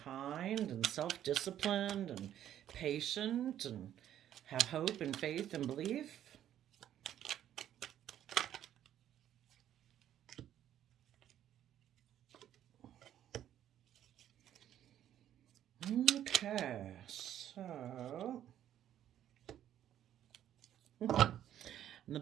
and self disciplined and patient and have hope and faith and belief. Okay, so in the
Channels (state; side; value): quieter; left; 11.1 dB